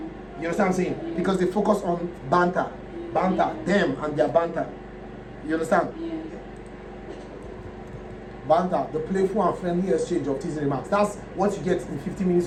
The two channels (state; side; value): identical; both; correlation 1.00